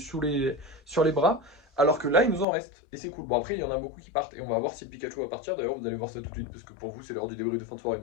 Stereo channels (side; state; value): right; drops out; at 2.5 s